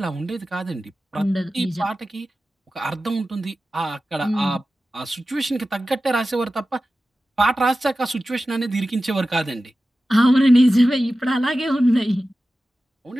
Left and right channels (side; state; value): both; normal; correlation 0.94